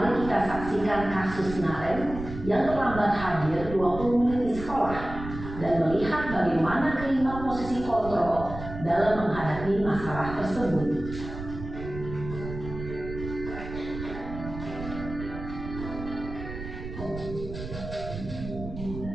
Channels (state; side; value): noise; right; rumble, 10 dB below the sound